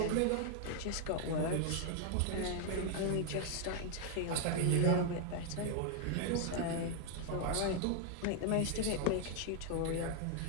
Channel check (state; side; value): different; both; correlation 0.00